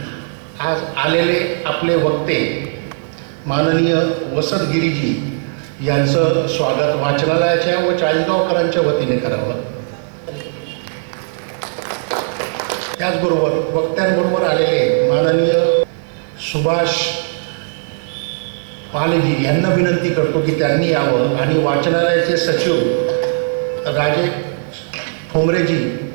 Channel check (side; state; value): left; silent; digital silence